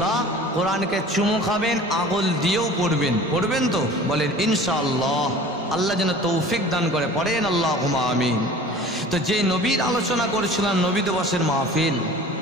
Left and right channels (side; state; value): both; normal; correlation 0.43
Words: কোরআনকে চুমু খাবেন, আঙুল দিয়েও পড়বেন। পড়বেন তো? বলেন ইনশাআল্লাহ। আল্লাহ যেন তৌফিক দান করে, পড়েন আল্লাহুম্মা আমিন। তো যে নবীর আলোচনা করেছিলাম, নবী দিবসের মাহফিল,